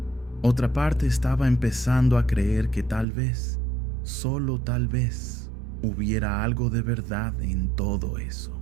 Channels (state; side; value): drops out; left; at 3.1 s